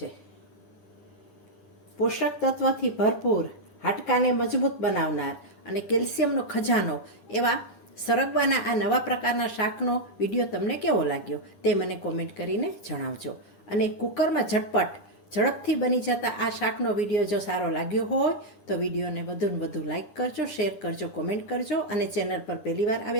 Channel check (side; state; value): right; late; 9.8 ms